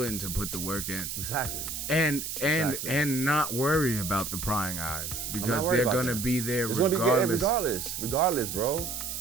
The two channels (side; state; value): right; noise; hiss, 5 dB below the sound